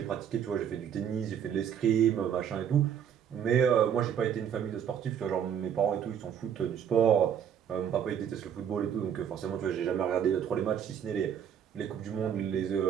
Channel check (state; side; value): quieter; left; 8.6 dB